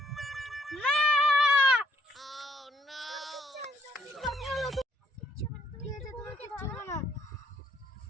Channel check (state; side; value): normal; both; correlation 0.68